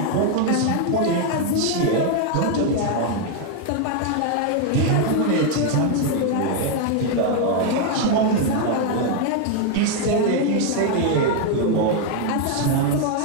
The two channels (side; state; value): both; different; correlation 0.00